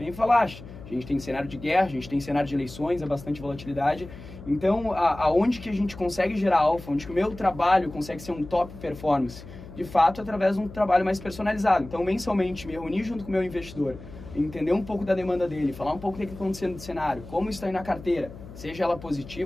falaste. A gente tem cenário de guerra, a gente tem cenário de eleições, é bastante volatilidade. Então, aonde que a gente consegue gerar alfa, onde que o meu trabalho consegue ser um top performance? De fato, através de um trabalho mais personalizado. Então, mensalmente, me reunir junto com o meu investidor, entender um pouco da demanda dele, falar um pouco do que está acontecendo no cenário, como está aí na carteira, seja ela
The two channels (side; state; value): left; noise; hum, 15 dB below the sound